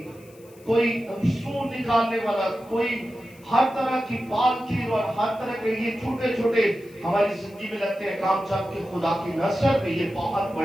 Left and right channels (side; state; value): left; noise; hiss, 27 dB below the sound